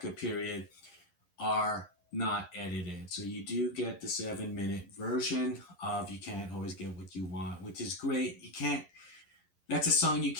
period are not edited. So you do get the 7-minute version of You Can't Always Get What You Want, which is great. You can't, that's a song you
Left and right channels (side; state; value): right; late; 11 ms